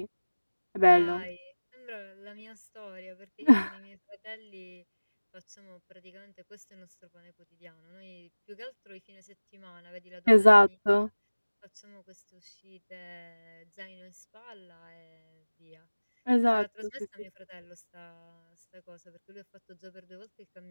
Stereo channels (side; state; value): both; inverted; correlation -1.00